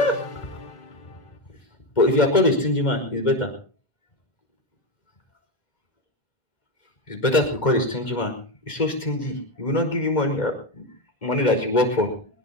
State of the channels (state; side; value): late; right; 2.1 ms